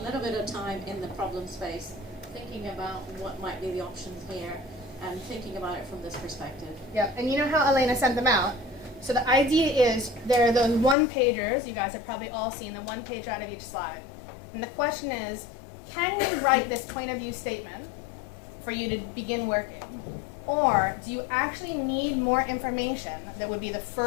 little bit of time in the problem space thinking about what might be the options here and thinking about it from this perspective. Yep, and you know how Elena sent them out? So the idea is there are those one-pagers, you guys have probably all seen the one pager out of each slide. And the question is, can you write this point of view statement for you to begin working? Or do you actually need more information that would be the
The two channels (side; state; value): right; drops out; at 11.0 s